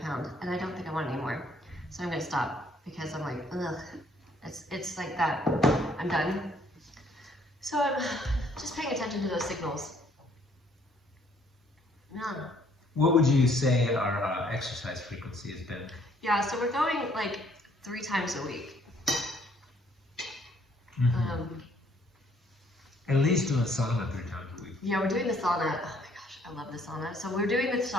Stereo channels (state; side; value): normal; both; correlation 0.64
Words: pound, and I don't think I want it anymore. So I'm gonna stop because I'm like, ugh. It's like that. I'm done. So I'm just paying attention to those signals. Yeah. What would you say our exercise frequency has been? Yeah, so we're going like 3 times a week. At least doing sauna 3 times a week. Yeah, we're doing the sauna. Oh my gosh, I love the sauna. So we're doing the